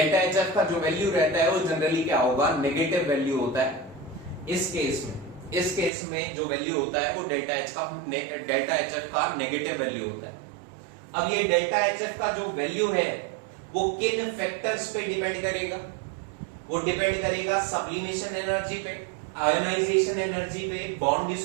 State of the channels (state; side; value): drops out; left; at 5.9 s